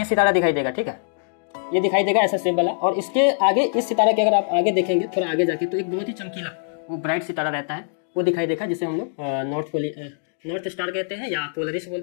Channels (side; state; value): right; silent; digital silence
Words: सितारा दिखाई देगा, ठीक है। ये दिखाई देगा ऐसा शेप वाला, और इसके आगे इस सितारा के अगर आप आगे देखेंगे थोड़ा आगे जाके, तो एक बहुत ही चमकीला वो ब्राइट सितारा रहता है, वो दिखाई देगा, जिसे हम लोग नॉर्थ स्टार कहते हैं, या पोलरिस